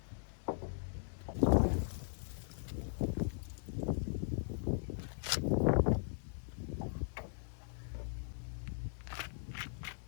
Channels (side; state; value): right; silent; digital silence